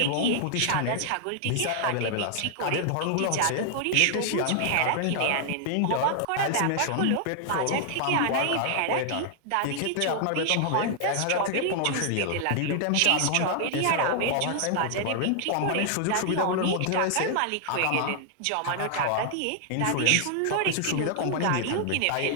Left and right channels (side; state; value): both; different; correlation 0.00